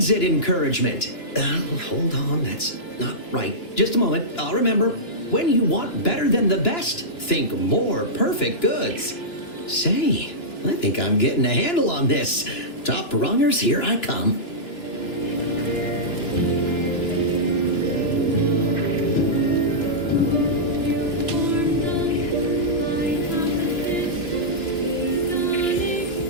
encouragement. Hold on, that's not right. Just a moment, I'll remember. When you want better than the best, think more perfect goods. Say, I think I'm getting a handle on this. Top rungers, here I come.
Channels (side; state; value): right; late; 2.9 ms